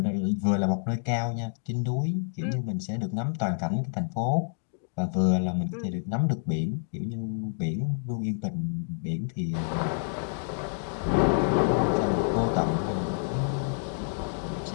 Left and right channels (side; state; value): right; silent; digital silence